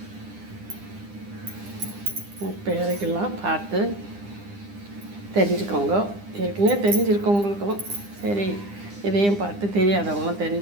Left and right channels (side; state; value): left; late; 9.9 ms